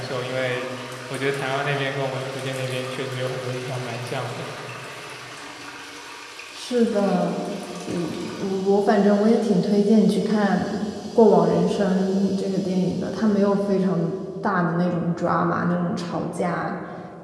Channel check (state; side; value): identical; both; correlation 1.00